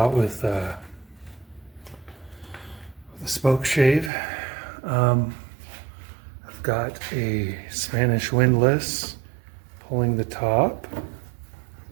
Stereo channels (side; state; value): left; drops out; at 4.1 s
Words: with a spoke shave. I've got a Spanish windlass pulling the top.